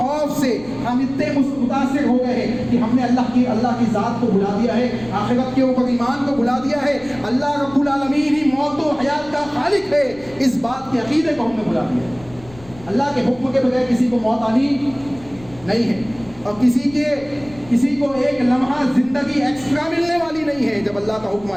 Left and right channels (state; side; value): noise; left; rumble, 22 dB below the sound